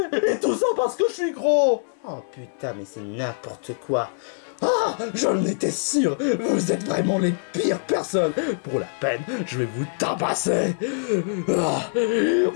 Et tout ça parce que je suis gros. Oh putain, mais c'est n'importe quoi. Ah, j'en étais sûr. Vous êtes vraiment les pires personnes. Pour la peine, je vais vous tabasser. Ah,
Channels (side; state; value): right; silent; digital silence